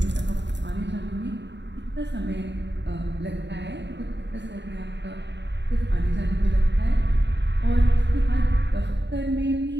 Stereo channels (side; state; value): left; late; 0.52 ms